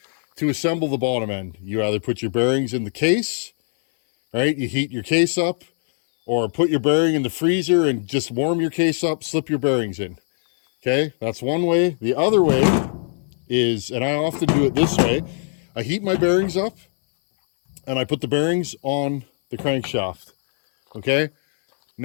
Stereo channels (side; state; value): right; silent; 61 dB below the other